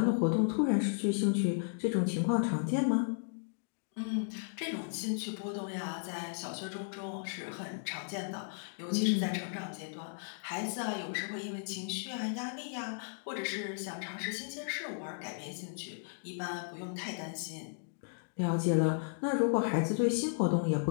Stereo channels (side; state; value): right; silent; digital silence